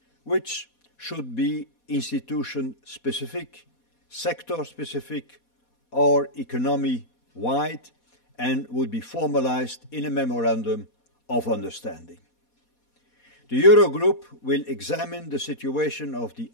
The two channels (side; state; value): right; late; 4.2 ms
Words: which should be institution-specific, sector-specific, or economy-wide, and would be formalized in a memorandum of understanding. The Eurogroup will examine the situation of the